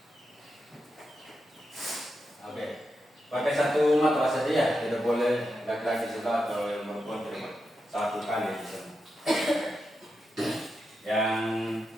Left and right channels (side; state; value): both; normal; correlation 0.87